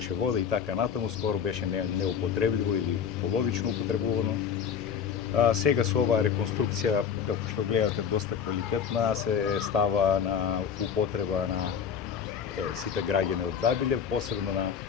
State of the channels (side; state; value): right; quieter; 7.4 dB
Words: вода и така натаму, скоро беше неупотребливо или половично употребувано. Сега со оваа реконструкција, како што гледате, доста квалитетна, се става на употреба на сите граѓани од Дабиле, посебно на